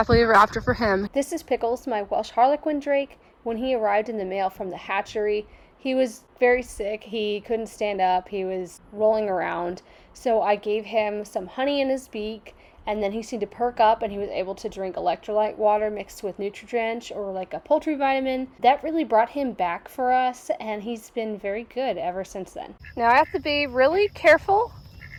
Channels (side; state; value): both; identical; correlation 1.00